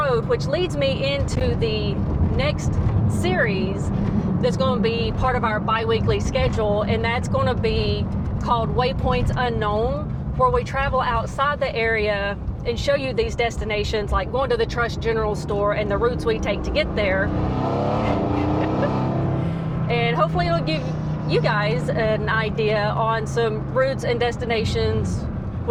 which leads me into the next series that's going to be part of our bi-weekly schedule. And that's going to be called Waypoints Unknown, where we travel outside the area and show you these destinations, like going to the Trust General Store and the routes we take to get there. And hopefully it'll give you guys an idea on some routes and destinations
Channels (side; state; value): both; identical; correlation 1.00